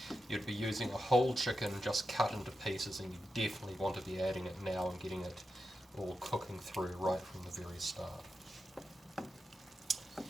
you'd be using a whole chicken just cut into pieces, and you definitely want to be adding it now and getting it all cooking through right from the very start.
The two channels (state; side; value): normal; both; correlation 0.88